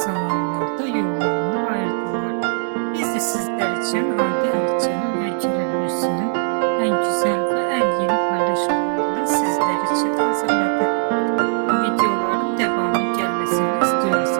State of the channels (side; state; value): left; silent; 60 dB below the other